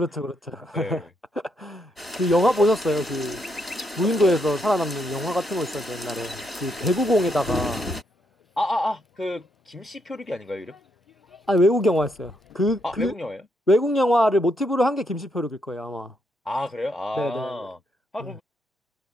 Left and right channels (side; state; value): both; normal; correlation 0.77